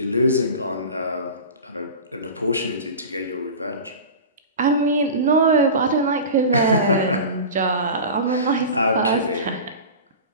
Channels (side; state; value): both; inverted; correlation -0.32